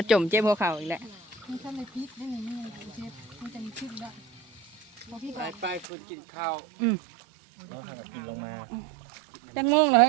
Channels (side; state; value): left; drops out; at 5.9 s